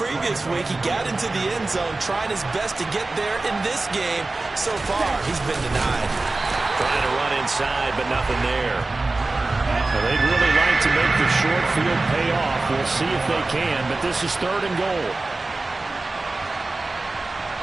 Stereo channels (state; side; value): quieter; left; 3.3 dB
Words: week. He got into the end zone, trying his best to get there in this game. So far, he's been denied. Trying to run inside, but nothing there. Well, they'd really like to make the short field pay off. We'll see if they can, but this is 3rd and goal.